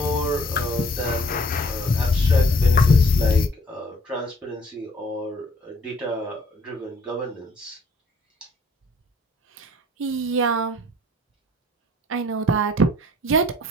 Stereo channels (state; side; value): normal; both; correlation 0.59